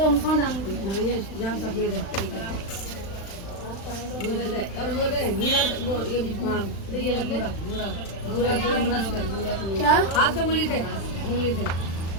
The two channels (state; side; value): late; right; 36 ms